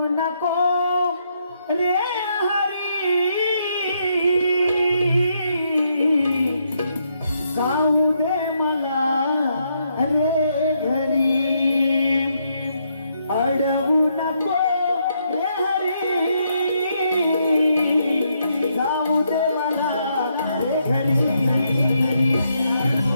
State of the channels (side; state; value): both; inverted; correlation -0.76